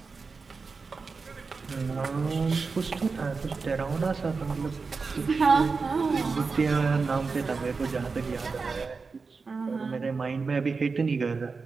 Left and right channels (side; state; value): left; quieter; 4.6 dB